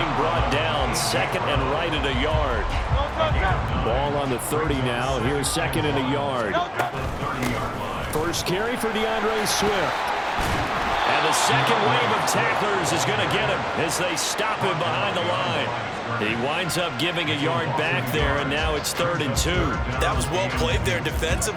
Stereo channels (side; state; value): both; identical; correlation 1.00